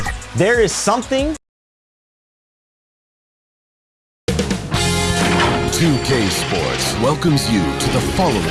There is something 2K Sports welcomes you to the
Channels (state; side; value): identical; both; correlation 1.00